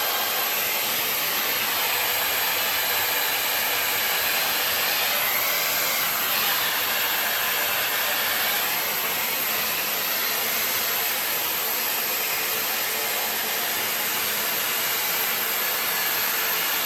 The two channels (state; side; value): identical; both; correlation 1.00